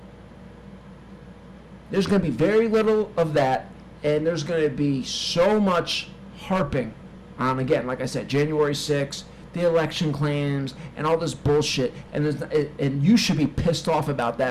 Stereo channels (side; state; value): both; identical; correlation 1.00